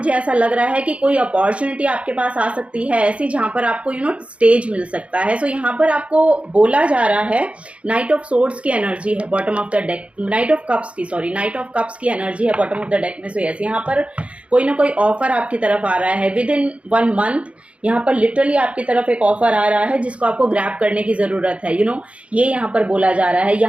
ऐसा लग रहा है कि कोई अपॉर्चुनिटी आपके पास आ सकती है ऐसी, जहाँ पर आपको यू नो स्टेज मिल सकता है। सो यहाँ पर आपको बोला जा रहा है, नाइट ऑफ सोर्ड्स की एनर्जी है bottom of the deck, night of cups की एनर्जी है बॉटम ऑफ द डेक में। सो यस, यहाँ पर कोई ना कोई ऑफर आपकी तरफ आ रहा है विद इन 1 मंथ। यहाँ पर लिटरली आपकी तरफ एक ऑफर आ रहा है जिसको आपको ग्रैब करने की ज़रूरत है। यू नो, ये यहाँ पर बोला जा रहा है,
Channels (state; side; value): late; left; 0.062 ms